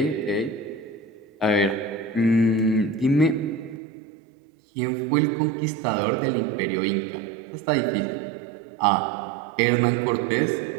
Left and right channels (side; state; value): left; drops out; at 3.8 s